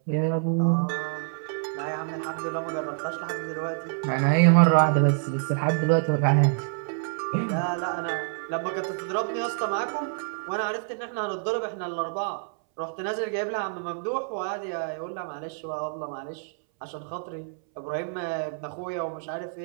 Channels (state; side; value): silent; left; 60 dB below the other